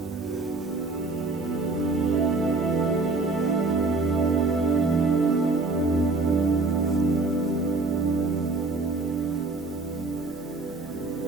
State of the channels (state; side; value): quieter; left; 3.5 dB